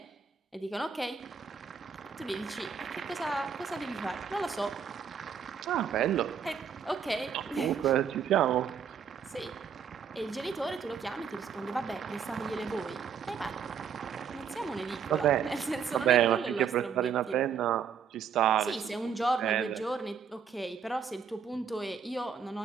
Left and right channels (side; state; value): left; quieter; 6.9 dB